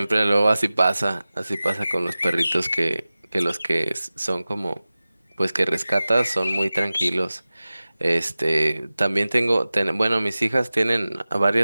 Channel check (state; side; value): inverted; both; correlation -0.97